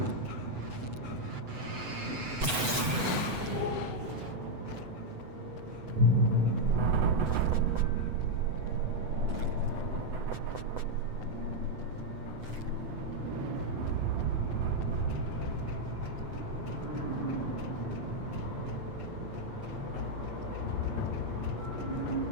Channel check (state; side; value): late; left; 8.0 ms